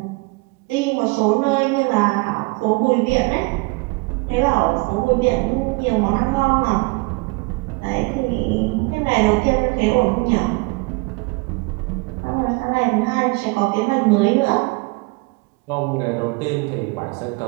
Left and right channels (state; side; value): quieter; left; 27.0 dB